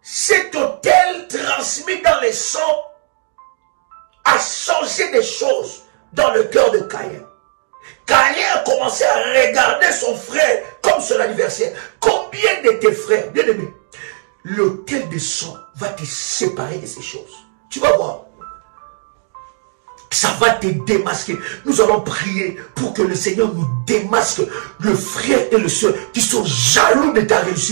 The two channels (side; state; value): left; silent; digital silence